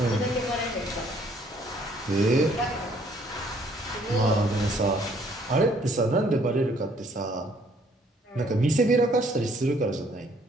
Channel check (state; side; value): normal; both; correlation 0.64